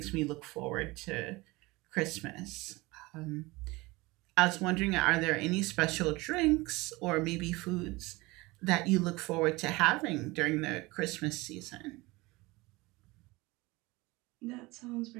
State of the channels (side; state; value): left; quieter; 22.4 dB